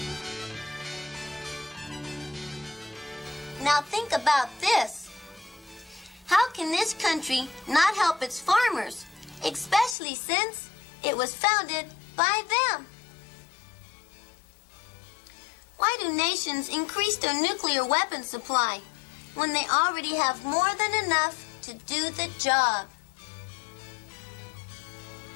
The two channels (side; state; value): right; drops out; at 10.0 s